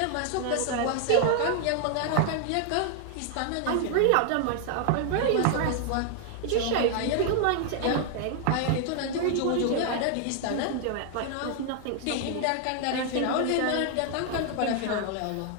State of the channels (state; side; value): different; both; correlation 0.00